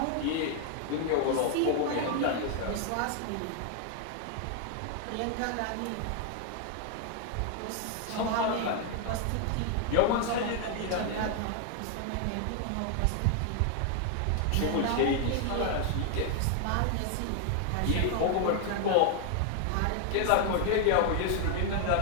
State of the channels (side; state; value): both; different; correlation 0.00